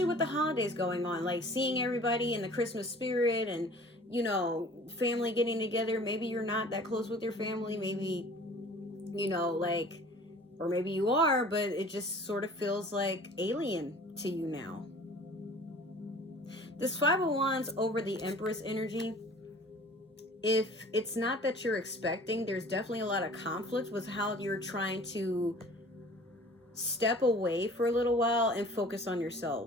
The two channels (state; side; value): normal; both; correlation 0.47